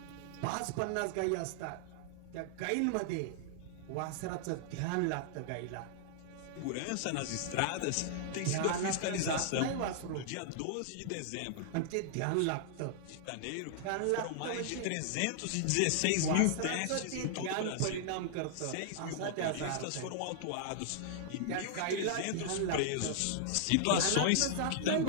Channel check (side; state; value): both; different; correlation -0.01